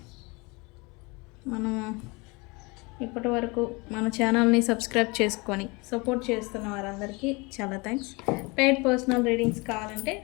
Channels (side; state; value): right; quieter; 27.0 dB